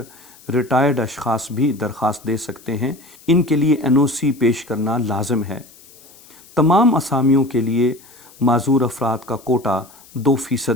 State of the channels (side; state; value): left; noise; hiss, 24 dB below the sound